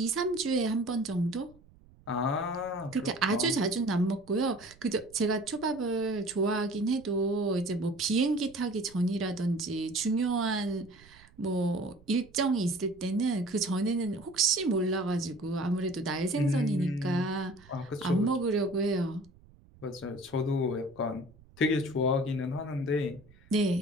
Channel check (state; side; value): noise; right; rumble, 26 dB below the sound